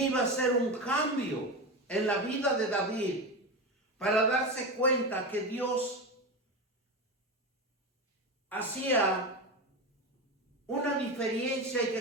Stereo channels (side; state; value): both; normal; correlation 0.20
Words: iba a ser un cambio en la vida de David para darse cuenta que Dios hacía una diferencia y